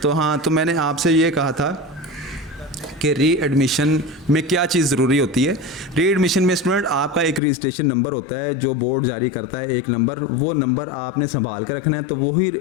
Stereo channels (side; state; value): right; drops out; at 7.4 s